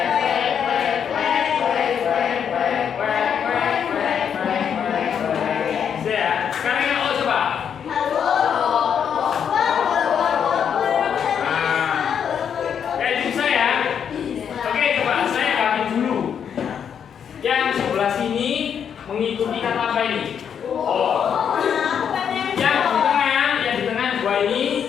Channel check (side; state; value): right; quieter; 7.9 dB